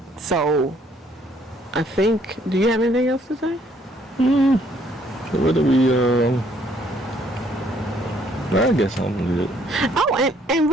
So, I think, do you have anything else to say? What do we, I guess I'm good. Oh, and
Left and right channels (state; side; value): normal; both; correlation 0.65